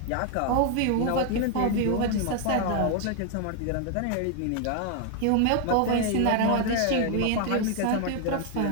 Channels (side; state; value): both; different; correlation 0.01